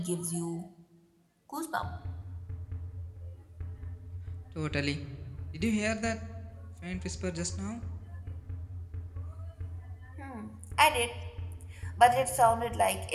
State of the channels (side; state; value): both; identical; correlation 1.00